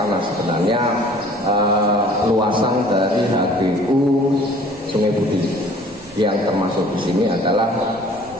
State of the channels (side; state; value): both; normal; correlation 0.52